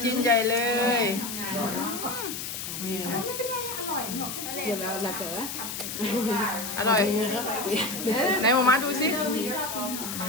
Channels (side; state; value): left; noise; hiss, 6 dB below the sound